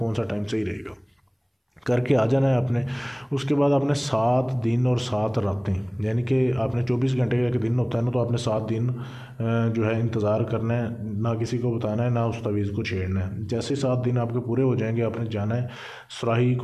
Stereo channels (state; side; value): identical; both; correlation 1.00